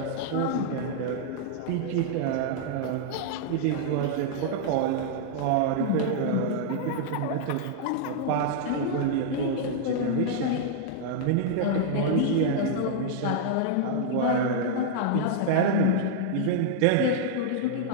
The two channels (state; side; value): different; both; correlation -0.01